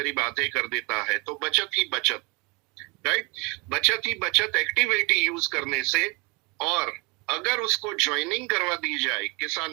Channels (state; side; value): quieter; left; 28.5 dB